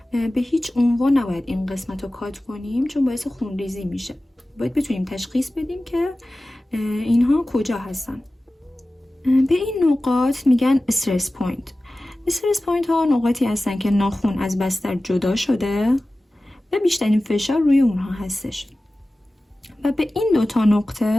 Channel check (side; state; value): both; normal; correlation 0.96